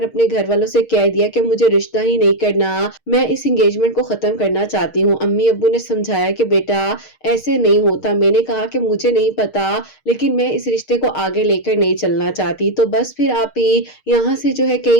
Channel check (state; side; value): late; right; 6.5 ms